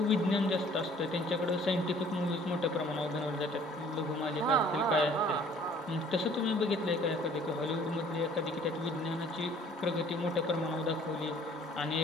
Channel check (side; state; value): both; normal; correlation 0.55